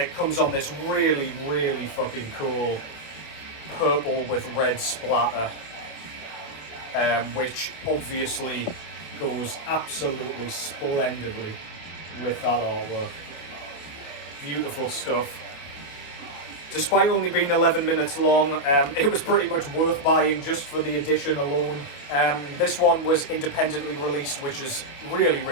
comes on this really, really fucking cool purple with red splatter. Which obviously goes absolutely splendidly with that artwork. Beautiful stuff. Despite only being 11 minutes long, it was pretty much worth buying just for the edition alone. This one was independently released, which is really,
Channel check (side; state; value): right; late; 28 ms